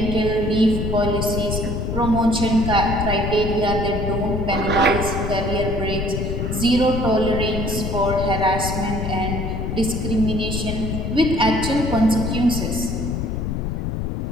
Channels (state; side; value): noise; left; rumble, 2 dB below the sound